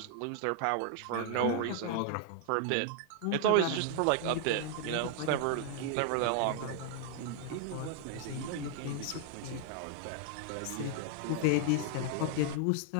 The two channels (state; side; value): different; both; correlation 0.00